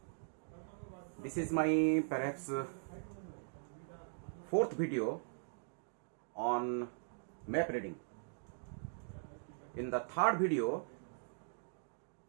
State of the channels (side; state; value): left; silent; digital silence